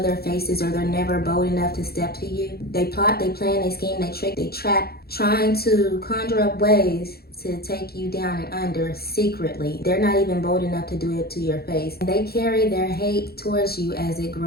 their faces, or they're never bold enough to step to you. They plot, they plan, they scheme, they trick, they trap, trying to conjure up ways to take you down and under secretly. They're not even bold enough to do it to your face. They carry their hate towards you as it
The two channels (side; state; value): right; late; 0.45 ms